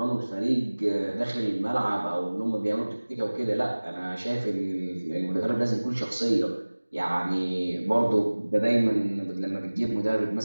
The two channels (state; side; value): inverted; both; correlation -1.00